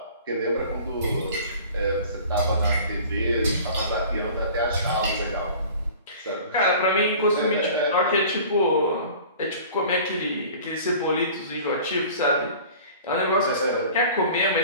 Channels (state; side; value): inverted; both; correlation -0.44